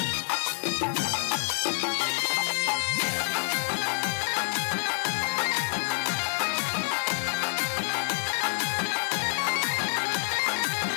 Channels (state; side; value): silent; right; digital silence